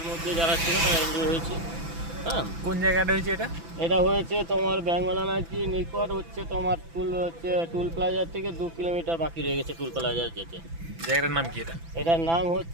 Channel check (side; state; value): left; late; 6.0 ms